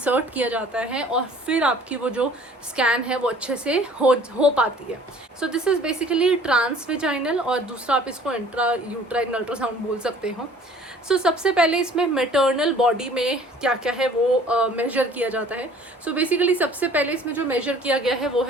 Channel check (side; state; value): both; normal; correlation 0.51